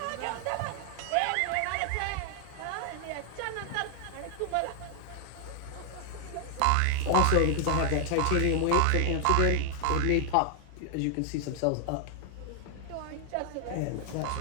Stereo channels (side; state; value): both; different; correlation 0.00